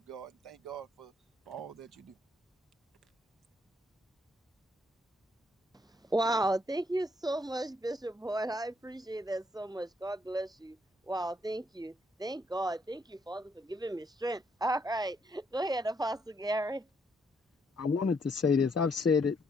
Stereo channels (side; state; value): both; normal; correlation 0.72